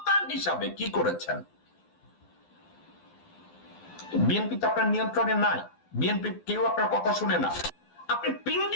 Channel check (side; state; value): right; late; 12 ms